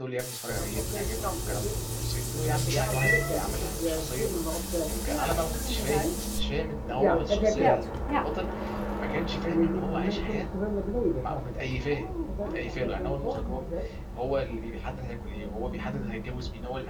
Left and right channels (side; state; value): both; identical; correlation 1.00